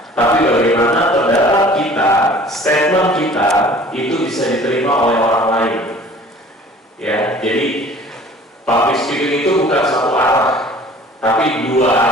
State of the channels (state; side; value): normal; both; correlation 0.48